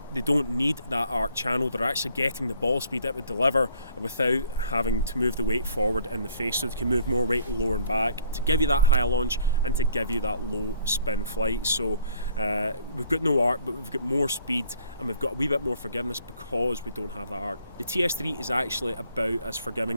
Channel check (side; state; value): both; inverted; correlation -0.60